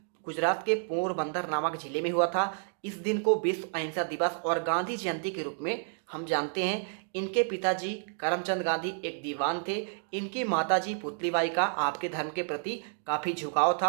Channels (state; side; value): silent; left; 58 dB below the other